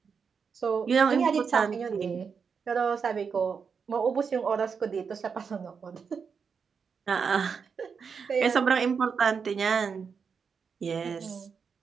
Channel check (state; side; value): quieter; left; 6.0 dB